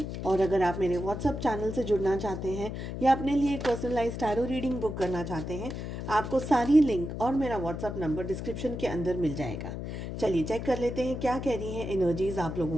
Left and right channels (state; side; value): noise; left; hum, 6 dB below the sound